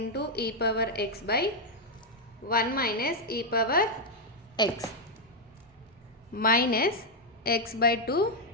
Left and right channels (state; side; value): normal; both; correlation 0.00